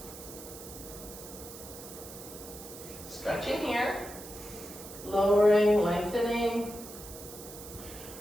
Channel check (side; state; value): right; noise; hiss, 14 dB below the sound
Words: Stretching here, lowering, lengthening,